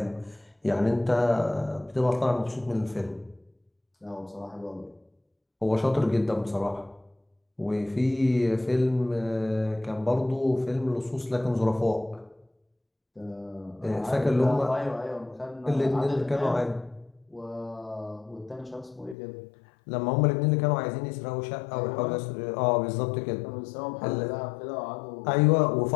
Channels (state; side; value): drops out; right; at 19.2 s